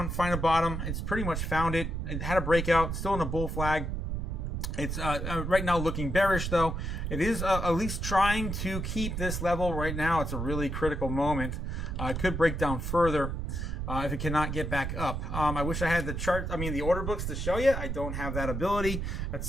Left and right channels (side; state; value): right; noise; rumble, 3 dB below the sound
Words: find a bottom. It's pretty much found it. It had a breakout, still in a bull flag. It's right now looking bearish, though. It is at least trying to keep this level right now. It's a really critical moment. It could break down further if it cannot get back up. I wish I had the order books to show you. I don't have that ability. At